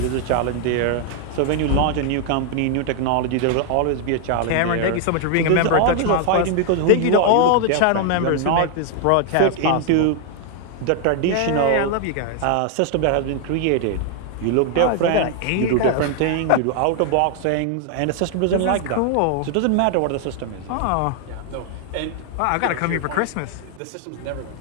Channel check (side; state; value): both; different; correlation 0.00